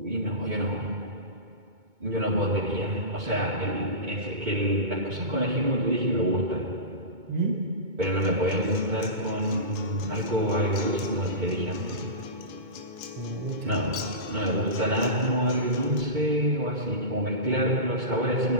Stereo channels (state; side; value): late; left; 2.2 ms